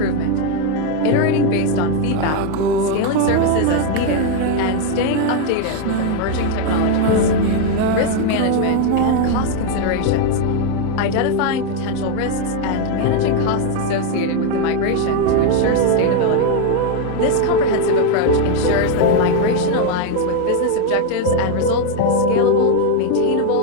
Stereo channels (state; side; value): different; both; correlation 0.01